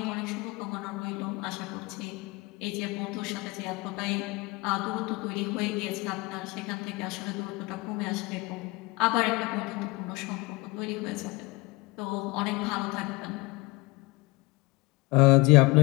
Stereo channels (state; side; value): quieter; right; 23.9 dB